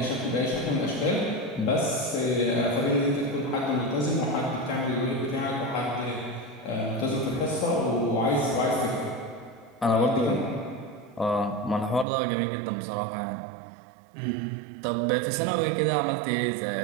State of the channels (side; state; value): left; drops out; at 12.1 s